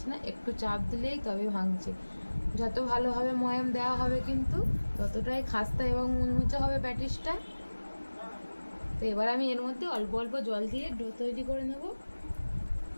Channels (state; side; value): inverted; both; correlation -1.00